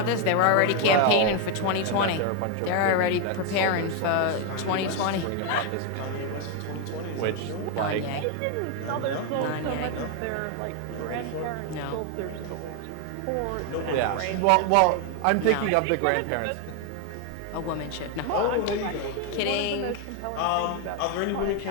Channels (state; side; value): different; both; correlation 0.01